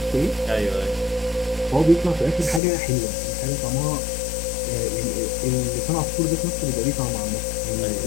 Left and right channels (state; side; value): drops out; right; at 2.6 s